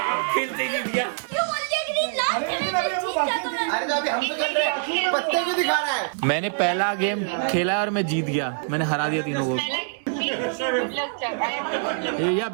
खेलते ही जीत गया। क्यों बोल दिया कि नहीं लास्ट लेकिन अभी हमको बाकी अरे तो अभी हम तो खेल रहे हैं, पत्ते क्यों दिखा रहा है? मैंने पहला गेम खेला और मैं जीत गया, मैंने हरा दिया तीनों को। या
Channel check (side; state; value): left; silent; 62 dB below the other